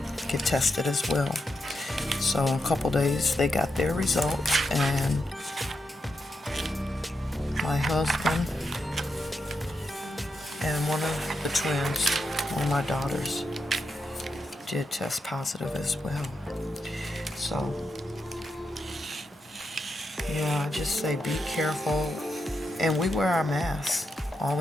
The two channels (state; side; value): normal; both; correlation 0.84